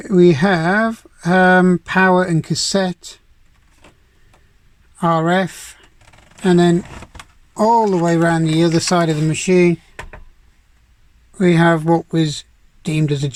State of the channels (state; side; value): identical; both; correlation 1.00